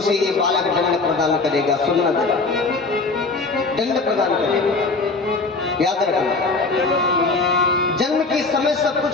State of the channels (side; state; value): right; quieter; 3.7 dB